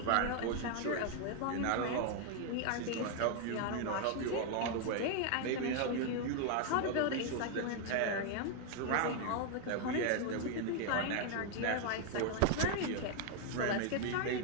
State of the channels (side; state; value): both; different; correlation 0.00